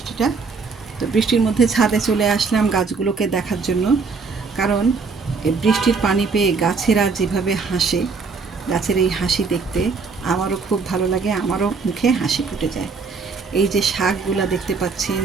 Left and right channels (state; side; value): quieter; left; 4.8 dB